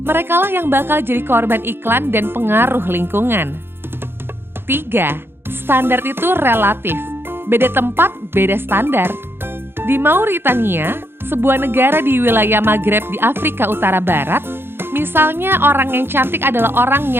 Merekalah yang bakal jadi korban iklan dan pengaruh lingkungan. 3. Standar itu relatif. Beda tempat, beda standar. Di Mauritania, sebuah negara di wilayah Maghreb di Afrika Utara Barat, misalnya orang yang cantik adalah orang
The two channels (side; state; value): left; late; 0.11 ms